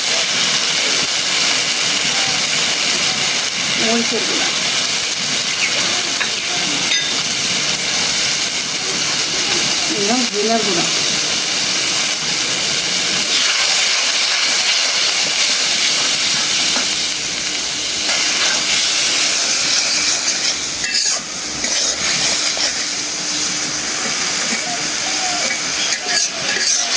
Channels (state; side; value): identical; both; correlation 1.00